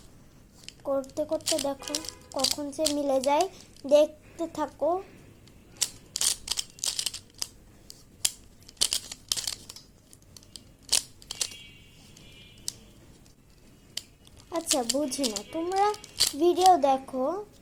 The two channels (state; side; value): identical; both; correlation 1.00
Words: করতে করতে দেখো কখন যে মিলে যায়, দেখতে থাকো। আচ্ছা বুঝি না, তোমরা ভিডিও দেখো